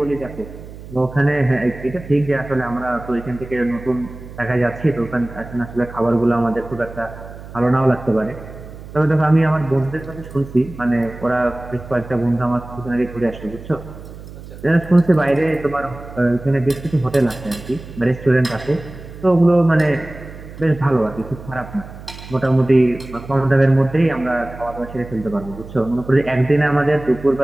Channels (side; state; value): right; noise; hum, 15 dB below the sound